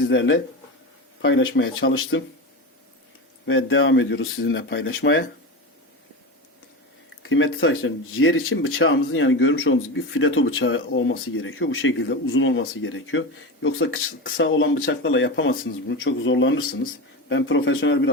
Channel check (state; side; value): normal; both; correlation 0.22